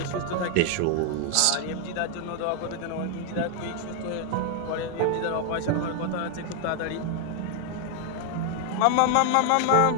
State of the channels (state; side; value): different; both; correlation 0.00